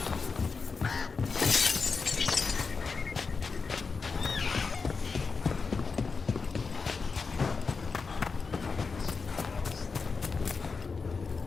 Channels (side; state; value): right; quieter; 4.8 dB